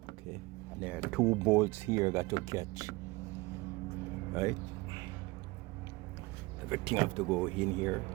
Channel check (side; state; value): left; quieter; 22.9 dB